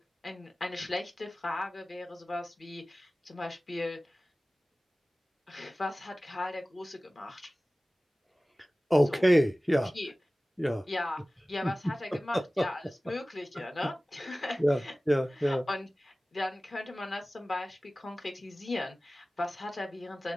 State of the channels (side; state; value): both; normal; correlation 0.97